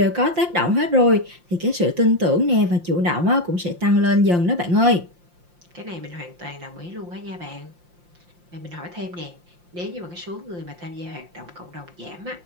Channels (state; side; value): late; left; 5.7 ms